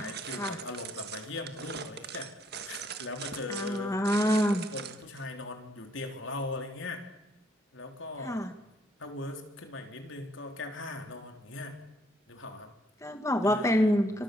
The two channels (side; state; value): both; normal; correlation 0.69